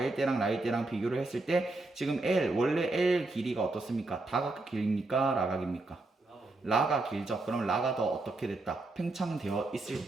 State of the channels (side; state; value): left; quieter; 3.1 dB